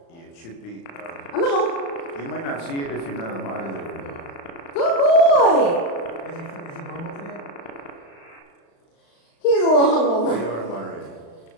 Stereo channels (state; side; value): late; right; 36 ms